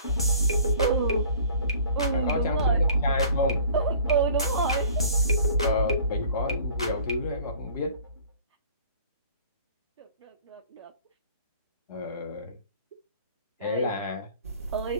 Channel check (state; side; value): inverted; both; correlation -0.50